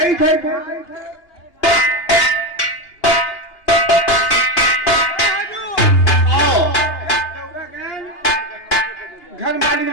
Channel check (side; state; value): right; late; 2.8 ms